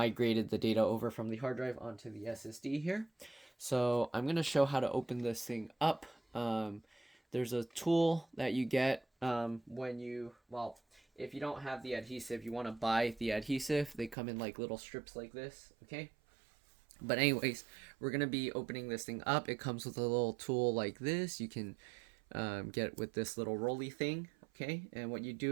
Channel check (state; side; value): drops out; left; at 14.2 s